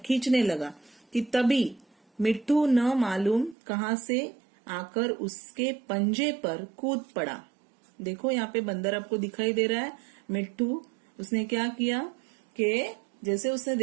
लगा कि तभी मिट्टू न मालूम कहां से आकर उसके पंजे पर कूद पड़ा। देखो यहाँ पे बंदर आपको दिखाई दे रहा है। मिट्टू उसने क्या किया कि जैसे उसने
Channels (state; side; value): drops out; left; at 3.6 s